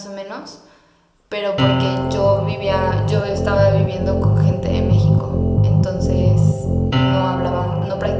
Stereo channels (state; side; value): identical; both; correlation 1.00